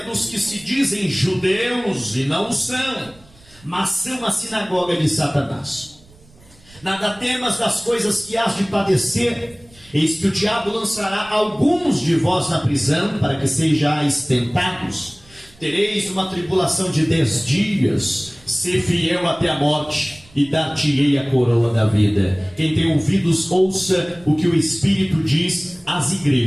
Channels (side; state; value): right; noise; rumble, 27 dB below the sound